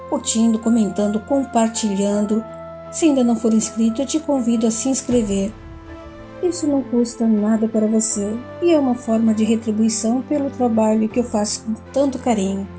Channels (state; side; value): identical; both; correlation 1.00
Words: curtindo, comentando, compartilhando. Se ainda não for inscrito, eu te convido a se inscrever. Isso não custa nada para você e é uma forma de retribuição pelo trabalho que eu faço com tanto carinho.